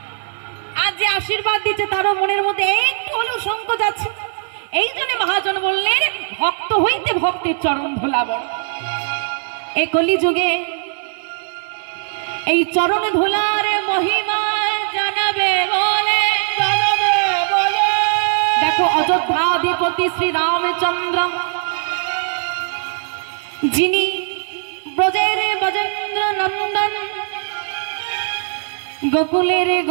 আর যে আশীর্বাদ দিচ্ছে তারও মনের মধ্যে একটু হলেও সংকোচ আছে। এই জন্য মহাজন বললেন, ভক্ত হইতে ভক্তের চরণ ধুলা বড়। এই কলিযুগে এই চরণ ধুলার মহিমা জানাবে বলে, দেখো অযোধ্যাধিপতি শ্রী রামচন্দ্র, যিনি ব্রজের ব্রজেন্দ্র নন্দন, গোকুলের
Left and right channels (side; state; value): left; silent; 66 dB below the other